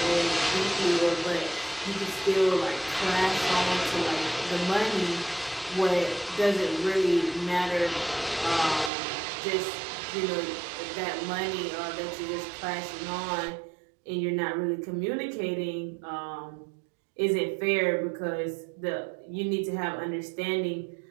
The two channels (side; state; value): left; drops out; at 8.9 s